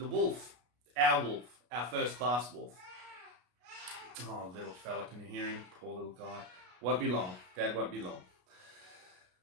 wolf, our first class wolf. Oh, little fella, can you hear him? Poor little guy. Won't be long. Dad won't be long.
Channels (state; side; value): late; left; 33 ms